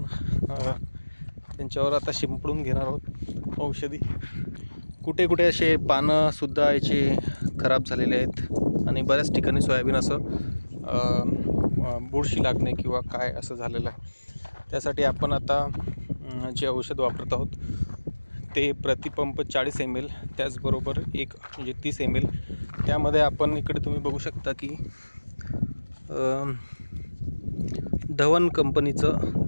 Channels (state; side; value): inverted; both; correlation -1.00